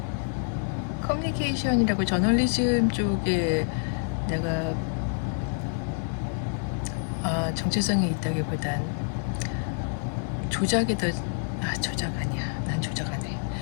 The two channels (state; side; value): silent; right; 60 dB below the other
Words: 커뮤니케이션이라고 저널리즘 쪽에 내가 정체성이 있다기보단 조작이 더 조작 아니야 난 조작 안 해